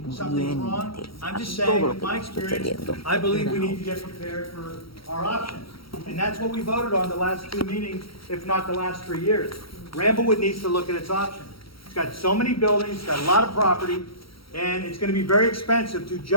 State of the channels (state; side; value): late; right; 0.75 ms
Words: something's wrong. I'm just saying, with my experience, I believe we need to get prepared for our options. And that's what we voted on the last 2 meetings, if not the last 3 years. Ramblewood needs to look at its options. It's got so many buildings, it's got a lot of property, and it's gonna be very expensive to